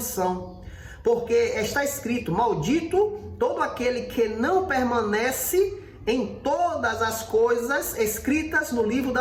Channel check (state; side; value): identical; both; correlation 1.00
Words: porque está escrito: maldito todo aquele que não permanece em todas as coisas escritas no livro